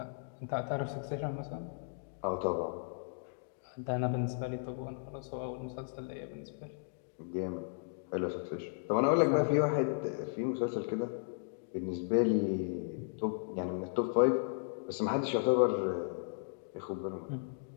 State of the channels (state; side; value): silent; right; digital silence